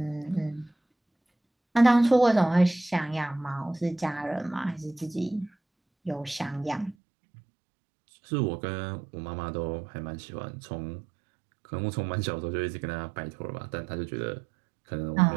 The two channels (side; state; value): left; drops out; at 7.0 s